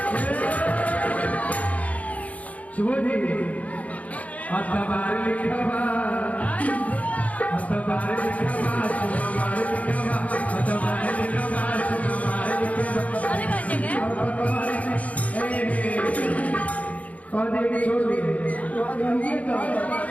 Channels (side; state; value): right; late; 0.069 ms